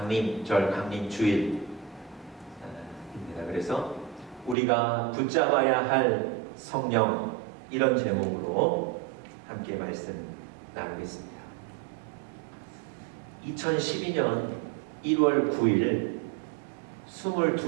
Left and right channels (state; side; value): drops out; left; at 4.5 s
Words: 강림주일입니다. 그래서 우리가 붙잡아야 할 성령, 이런 제목으로 함께 말씀 나누겠습니다. 2012년 1월 9일